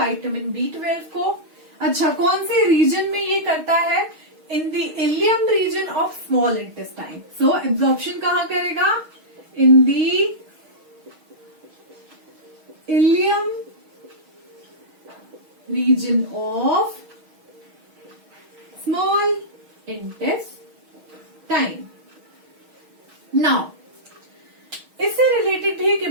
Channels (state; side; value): late; left; 6.3 ms